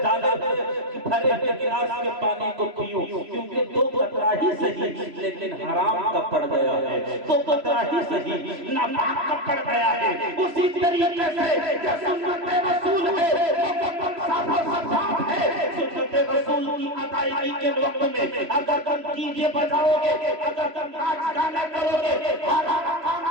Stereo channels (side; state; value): left; late; 3.0 ms